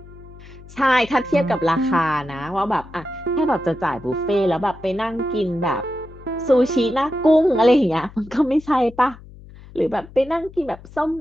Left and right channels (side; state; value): left; noise; hum, 19 dB below the sound